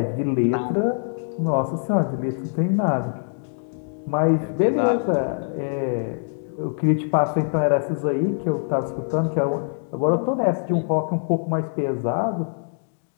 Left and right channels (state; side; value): silent; right; digital silence